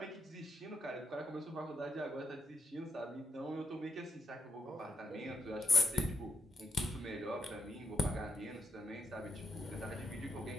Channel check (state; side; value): normal; both; correlation 0.78